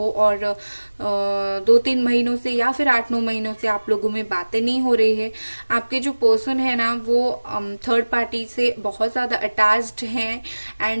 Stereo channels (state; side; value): inverted; both; correlation -1.00